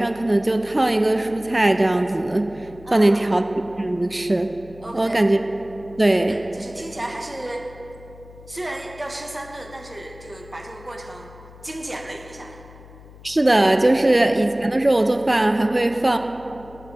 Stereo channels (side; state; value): left; noise; hum, 21 dB below the sound